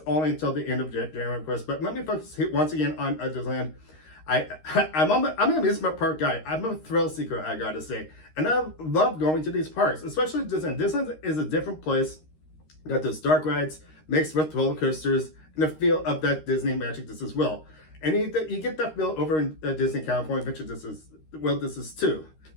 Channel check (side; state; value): right; late; 13 ms